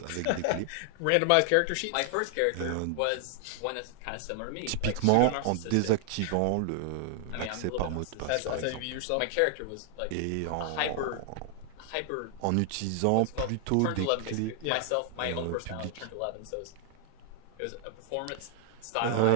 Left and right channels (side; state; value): both; different; correlation 0.00